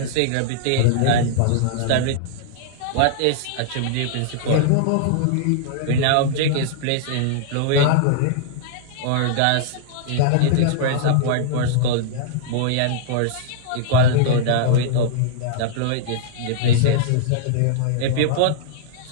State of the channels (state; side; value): different; both; correlation -0.01